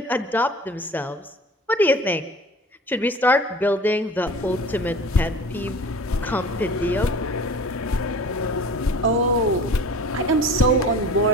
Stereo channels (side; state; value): both; normal; correlation 0.41